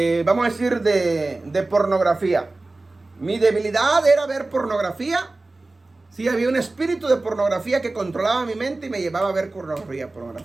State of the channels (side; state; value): left; quieter; 3.1 dB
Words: Vamos a decir, de pornografía. Mi debilidad era ver pornografía. Sí, había un espíritu de pornografía que controlaba mi mente y me llevaba a ver pornografía.